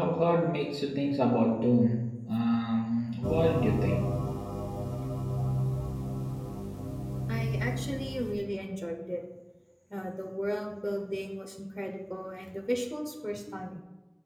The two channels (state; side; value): identical; both; correlation 1.00